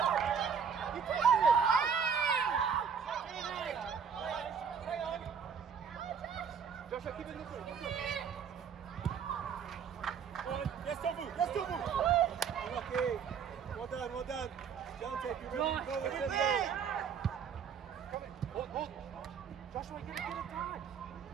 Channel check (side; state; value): left; quieter; 7.0 dB